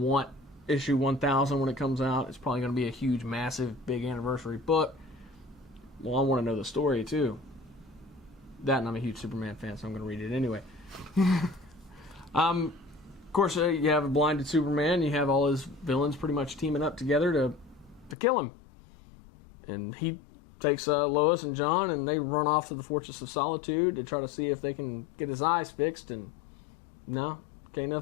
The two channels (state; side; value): drops out; right; at 18.2 s